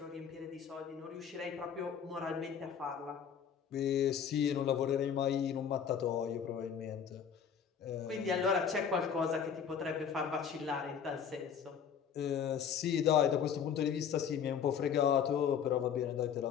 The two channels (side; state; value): right; quieter; 7.6 dB